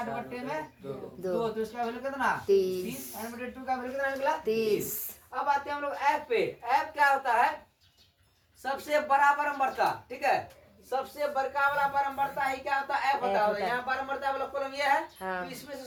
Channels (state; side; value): identical; both; correlation 1.00